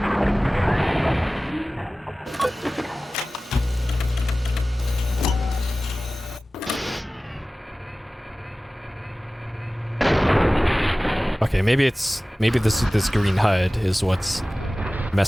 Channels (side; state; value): both; normal; correlation 0.97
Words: Okay, maybe this green HUD is what's